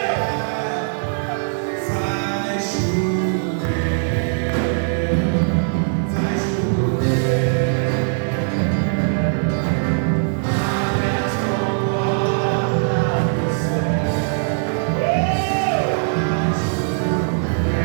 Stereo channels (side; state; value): left; silent; digital silence